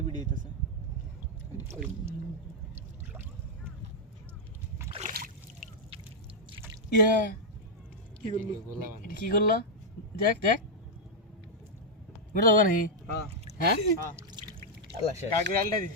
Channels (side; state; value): both; normal; correlation -0.04